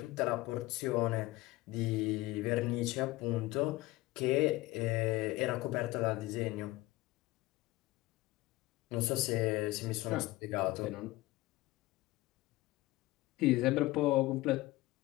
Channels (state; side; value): quieter; right; 19.2 dB